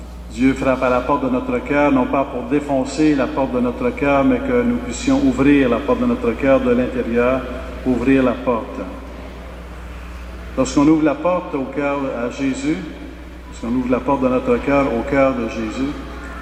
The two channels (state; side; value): identical; both; correlation 1.00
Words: Dieu frappe à la porte de notre cœur, non pas pour défoncer la porte de notre cœur, mais que nous puissions ouvrir la porte de notre cœur de l'intérieur, ouvrir la porte. Lorsqu'on ouvre la porte au cœur à Jésus, lorsqu'on ouvre la porte de notre cœur au cœur de Jésus,